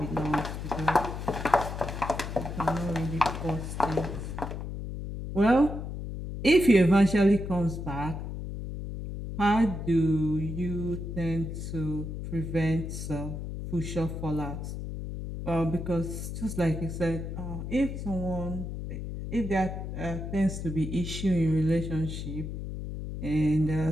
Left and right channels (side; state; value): left; noise; hum, 6 dB below the sound